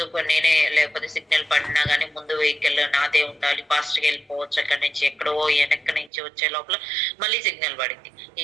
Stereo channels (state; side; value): drops out; left; at 6.1 s